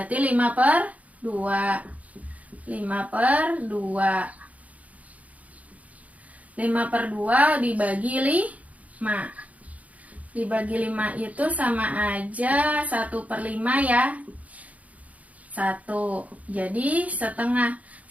5/2. 5/2. 5/2 dibagi 5. Dibagi 5 itu sama aja 1/5 ya. 1. Jadi setengah.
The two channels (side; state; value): left; late; 0.070 ms